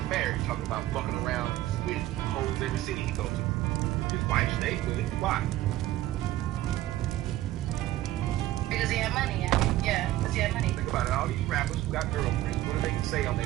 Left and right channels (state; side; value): quieter; left; 15.2 dB